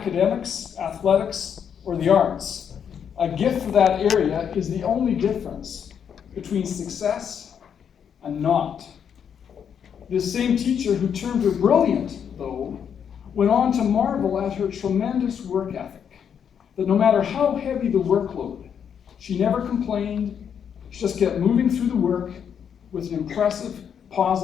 athletics, or the arts, a gift for that area is the only difference between success and not. This same teacher who termed her brilliant, though, went on to marvel at her tremendous work ethic, that no matter how heavy the workload, she never complained, she just kept moving through the work with an impressive,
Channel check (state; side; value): quieter; right; 7.9 dB